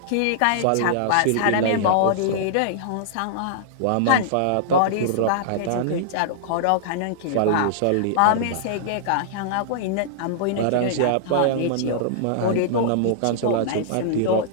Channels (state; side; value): different; both; correlation -0.02